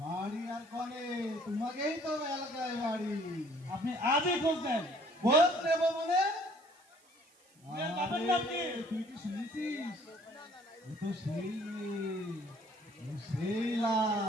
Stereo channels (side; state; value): right; noise; hiss, 30 dB below the sound